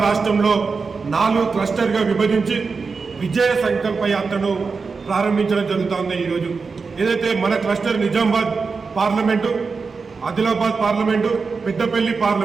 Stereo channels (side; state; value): left; quieter; 4.7 dB